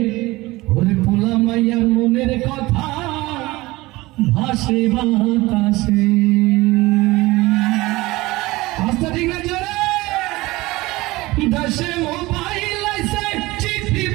ওরে পোলা মাইয়ার মনের কথা ভাসে বাতাসে। আস্তে ঠিক না জোরে? দেশে মোবাইল আইছে, চিঠি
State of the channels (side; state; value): left; quieter; 20.3 dB